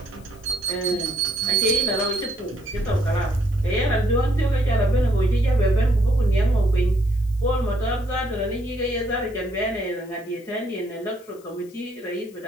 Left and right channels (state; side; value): noise; left; hiss, 27 dB below the sound